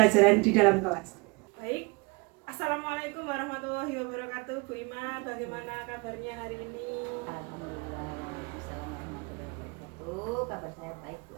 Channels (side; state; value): left; quieter; 28.7 dB